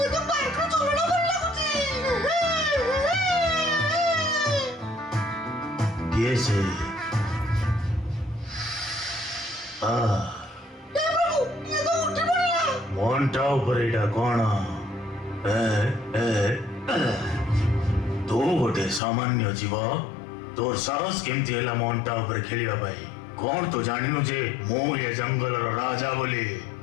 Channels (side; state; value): right; drops out; at 19.0 s